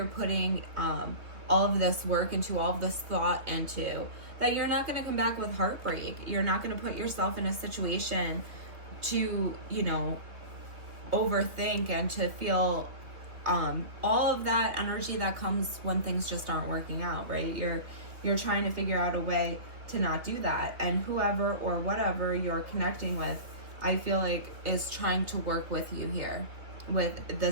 putting all of this work into, all of this thought into, that you're not going to come back with heartbreak. You're not going to put yourself in a situation to, overthink and to feel all of that energy that comes when things just aren't working out, right? You're trying to figure out a way to not do that. And whoever or whatever you're connecting with, I feel like is trying to work with you here.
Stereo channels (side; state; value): left; late; 2.8 ms